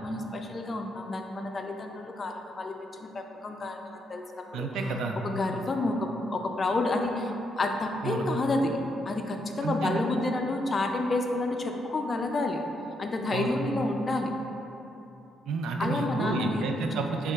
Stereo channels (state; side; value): normal; both; correlation 0.77